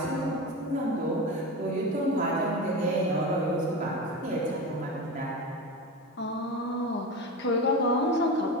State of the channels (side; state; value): both; normal; correlation 0.24